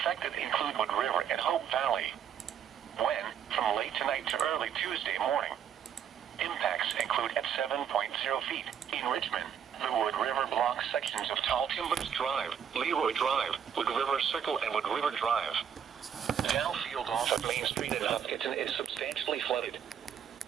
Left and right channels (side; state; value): left; quieter; 8.4 dB